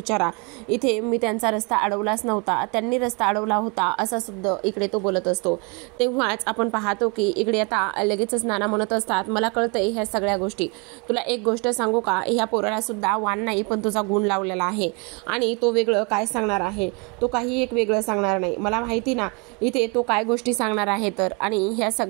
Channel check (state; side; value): quieter; left; 31.7 dB